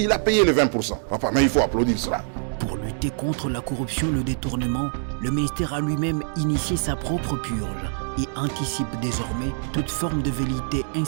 a payé les 20%. Enfin, mais il faut applaudir cela. Pour lutter contre la corruption et le détournement, le ministère a lui-même initié sa propre purge et anticipe désormais toute forme de velléité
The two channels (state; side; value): silent; left; digital silence